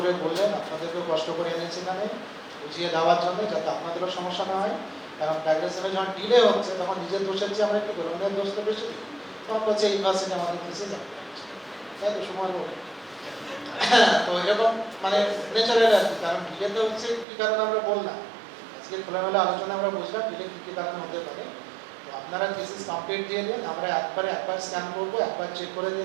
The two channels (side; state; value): left; drops out; at 17.2 s